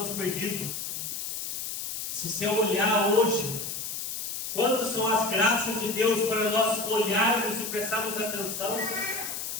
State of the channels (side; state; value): left; noise; hiss, 5 dB below the sound